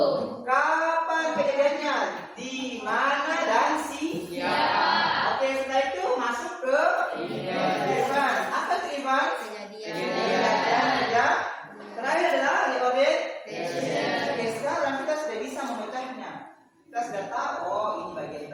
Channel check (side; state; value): both; identical; correlation 1.00